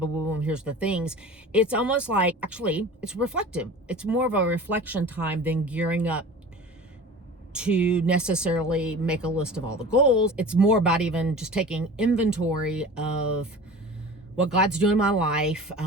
boom, boom, here's the things. It's almost like, actually, it's reflective. It's more of a reflection time than gearing up to necessarily make a list of all the goals. It's more about even just taking inventory of what God's doing in my life,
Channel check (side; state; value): both; normal; correlation 0.38